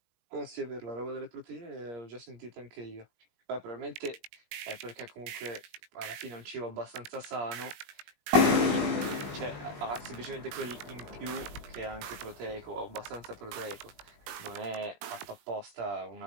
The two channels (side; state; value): left; late; 20 ms